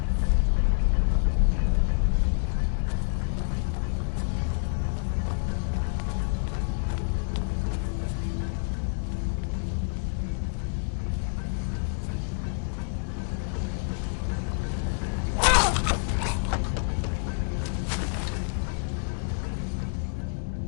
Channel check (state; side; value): silent; right; digital silence